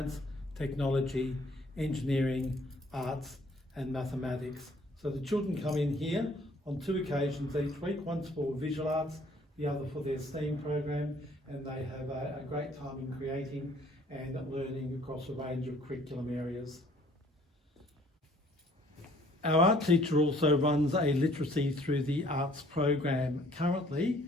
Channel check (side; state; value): both; normal; correlation 0.59